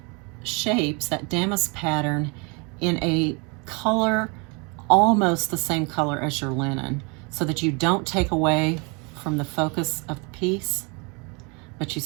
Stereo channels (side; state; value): left; quieter; 31.2 dB